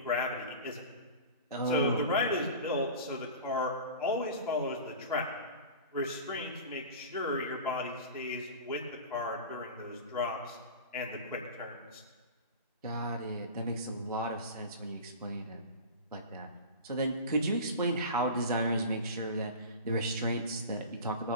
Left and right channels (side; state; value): both; inverted; correlation -0.33